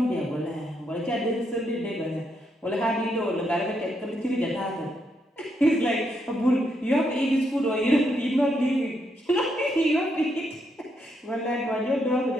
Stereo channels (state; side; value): normal; both; correlation 0.78